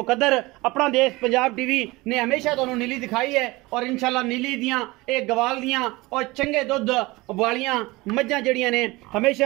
अपना देश पंजाब टीवी ने हमेशा तुहानू नीली दिखाई है और इंशाअल्लाह नीली दियां एक गवाल दियां और चंगे दुध वालियां मज्झां जड़ियां ने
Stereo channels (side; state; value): left; quieter; 21.8 dB